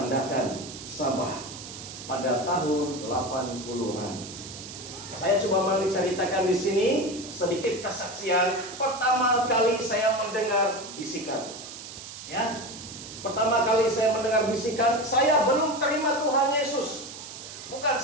Sabah pada tahun 80-an. Saya coba menceritakan di sini sedikit kesaksian pertama kali saya mendengar bisikan. Ya. Pertama kali saya mendengar bisikan, saya belum terima Tuhan Yesus. Bukan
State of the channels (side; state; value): right; noise; hiss, 12 dB below the sound